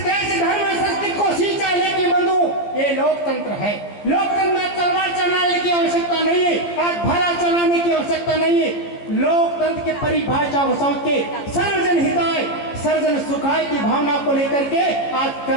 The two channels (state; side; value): late; right; 14 ms